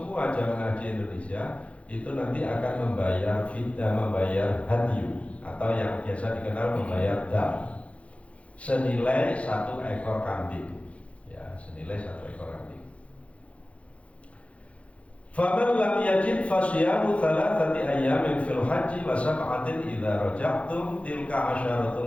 jamaah haji Indonesia itu nanti akan membayar fidyah, membayar hadyu atau yang biasa dikenal membayar dam senilai 1 ekor kambing, ya, senilai 1 ekor kambing. Faman lam yajid fasyamu thalathati ayyamin fil haji wa sab'atin idza raja'tum tilka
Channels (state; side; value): late; right; 0.063 ms